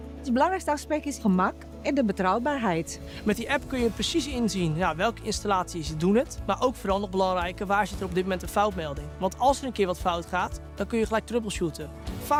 Het belangrijkste aspect is gemak en de betrouwbaarheid. Met die app kun je precies inzien welke installaties doen het. Maar ook vooral nog belangrijker, waar zit er op dit moment een foutmelding. Want als er een keer wat fout gaat, dan kun je gelijk troubleshooten.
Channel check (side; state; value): both; identical; correlation 1.00